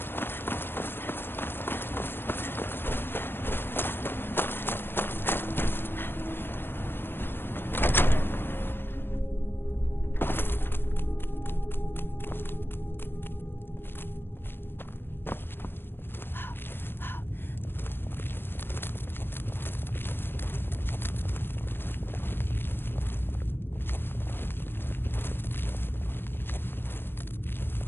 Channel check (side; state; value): right; late; 0.10 ms